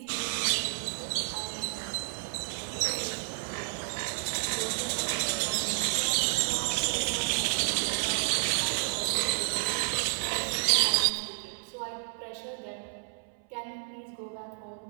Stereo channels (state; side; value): silent; left; 57 dB below the other